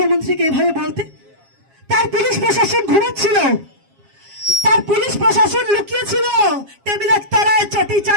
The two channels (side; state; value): left; late; 7.4 ms